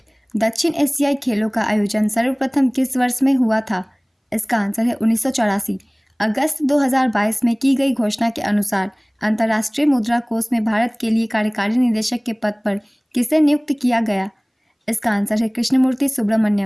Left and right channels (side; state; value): both; identical; correlation 1.00